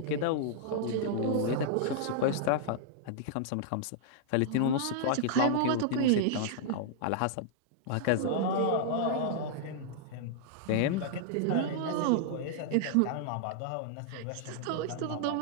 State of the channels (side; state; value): both; different; correlation -0.01